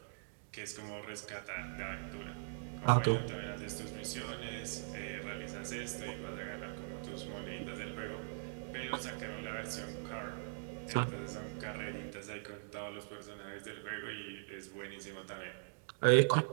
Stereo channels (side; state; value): left; silent; digital silence